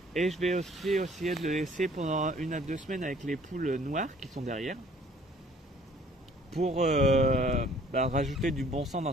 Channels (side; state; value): both; normal; correlation 0.56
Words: Et je vais aussi essayer de le laisser pendant 1 à 2 semaines avec les poules noires qui sont derrière pour rajouter du bon sang dans